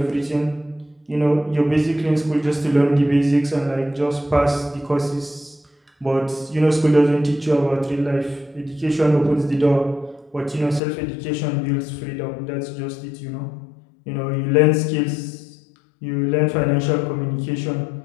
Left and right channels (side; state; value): right; drops out; at 10.8 s